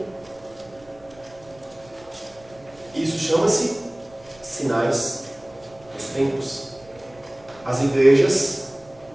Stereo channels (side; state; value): right; noise; rumble, 26 dB below the sound